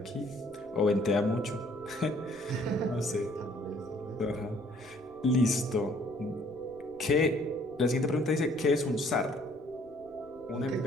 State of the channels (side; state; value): left; noise; rumble, 27 dB below the sound